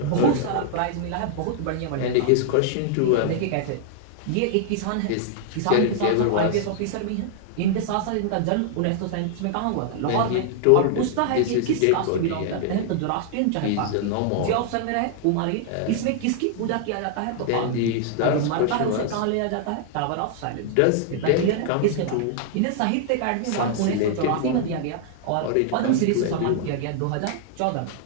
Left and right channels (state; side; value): different; both; correlation -0.01